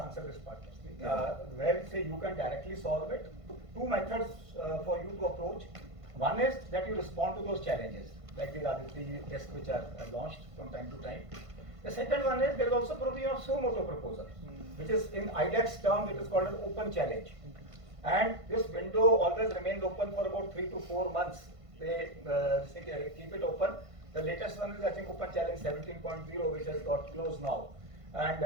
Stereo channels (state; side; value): late; left; 1.5 ms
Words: answer this part firstly. Yeah. Where say you can directly solve it, two methods for you to approach. One is that you respond to those challenges, like the ADG tests which are launched from time to time. The second one is there is also provision of suo motu proposal, which is in IDEX term, it is called an open challenge. And this window always remains open for about 3 to 4 months. They keep it open. The latest one is, I think, Open Challenge 17.0, which has got closed now. And